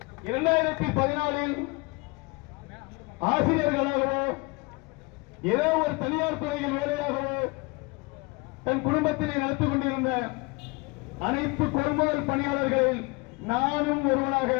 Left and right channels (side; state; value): right; quieter; 27.0 dB